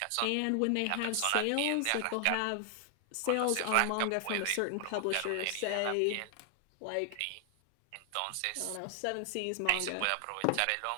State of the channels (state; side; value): different; both; correlation 0.00